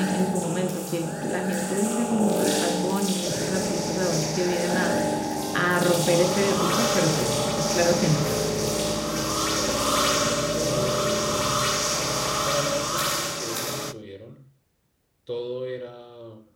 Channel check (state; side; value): identical; both; correlation 1.00